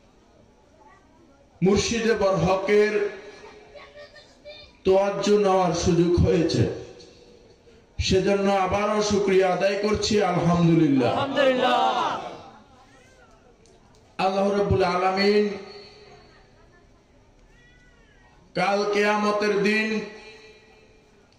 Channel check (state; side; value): identical; both; correlation 1.00